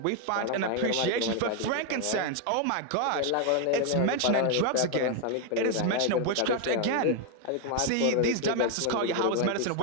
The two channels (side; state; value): both; different; correlation 0.01